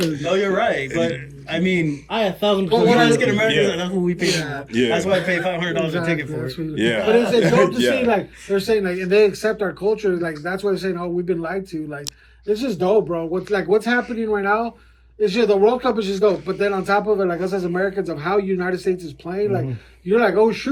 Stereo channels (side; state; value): both; identical; correlation 1.00